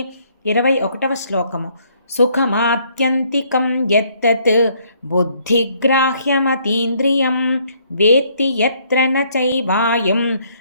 21వ శ్లోకము. సుఖమాత్యంతికం యత్తత్ బుద్ధిగ్రాహ్యమతీంద్రియం వేత్తి యత్ర న చైవాయం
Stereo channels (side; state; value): both; inverted; correlation -0.66